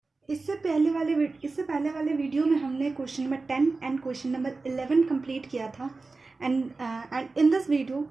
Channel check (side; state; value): left; quieter; 3.8 dB